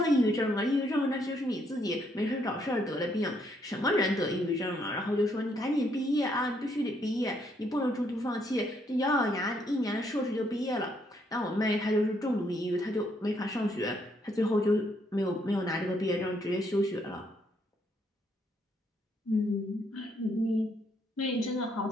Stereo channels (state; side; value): normal; both; correlation 0.72